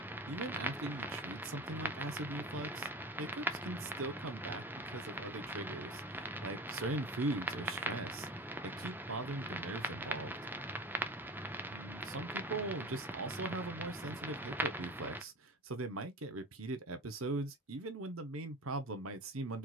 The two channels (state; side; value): normal; both; correlation 0.33